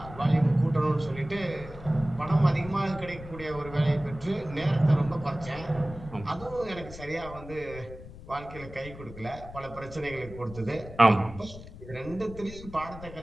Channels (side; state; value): left; noise; rumble, 15 dB below the sound